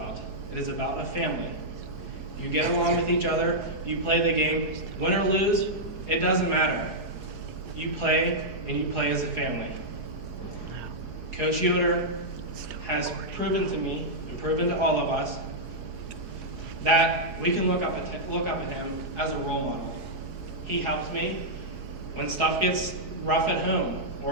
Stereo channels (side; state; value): left; late; 4.8 ms